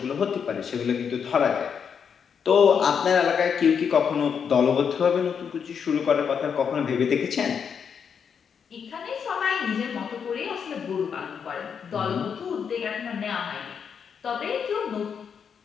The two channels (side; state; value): right; quieter; 7.0 dB